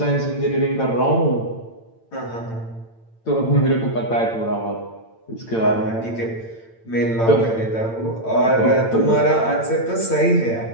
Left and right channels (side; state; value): right; late; 8.9 ms